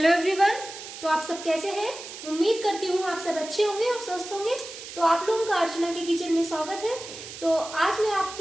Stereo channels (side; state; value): right; noise; hiss, 12 dB below the sound